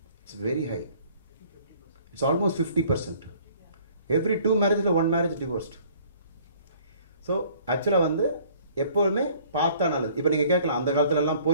It's very high. It's almost 50%. Every 2 marriages, 1 marriage divorced. So ஆக்சுவலாக வந்து எப்போதுமே பார்த்தா நல்லது. இப்போ நீங்கள் கேட்கலாம், அந்த காலத்துலலாம்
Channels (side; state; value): both; inverted; correlation -0.56